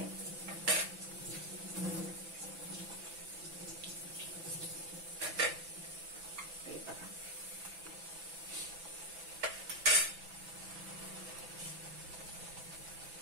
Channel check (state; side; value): late; left; 6.0 ms